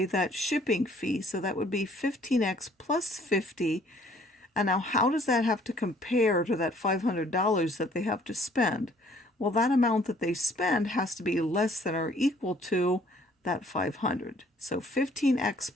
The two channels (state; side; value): normal; both; correlation 0.59